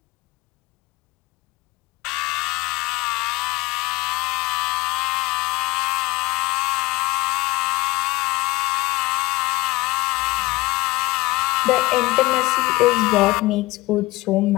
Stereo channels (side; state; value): right; quieter; 20.9 dB